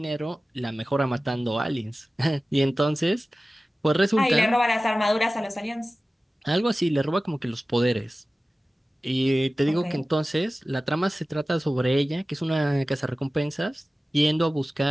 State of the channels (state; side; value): normal; both; correlation 0.96